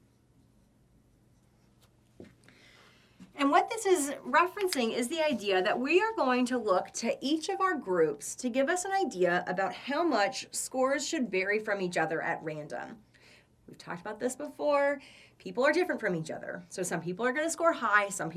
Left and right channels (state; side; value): identical; both; correlation 1.00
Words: And what this is referencing is the idea that we are going to look to each of our groups to give us an idea about how much scores should vary from each other at random. We've talked about this before. People are different from each other. So some people are going to score high, some